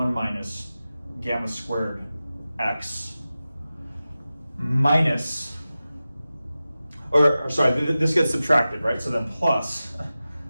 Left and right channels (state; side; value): inverted; both; correlation -0.95